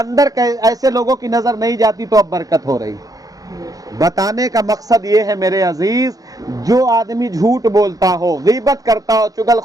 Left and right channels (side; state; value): left; late; 0.17 ms